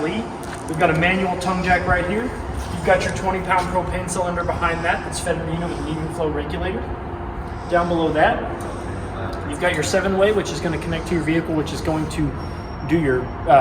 We've got a manual tongue jack right here. You've got your 20-pound propane cylinder behind that that's fed with an even flow regulator. Down below that, you've got your 7-way, which is going to connect to your vehicle, which is going to do your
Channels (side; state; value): both; identical; correlation 1.00